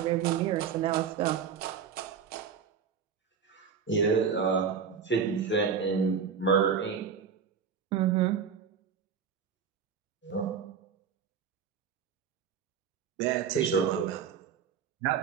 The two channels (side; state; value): left; quieter; 6.9 dB